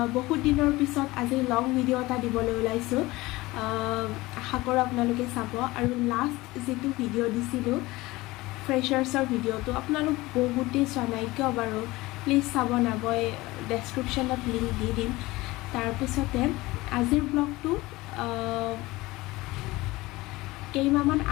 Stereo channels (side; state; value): right; quieter; 20.1 dB